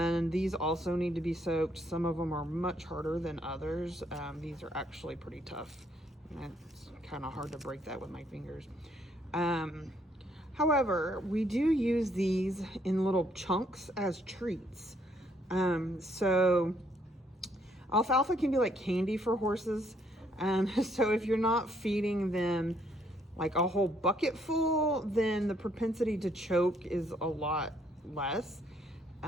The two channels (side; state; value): both; normal; correlation 0.69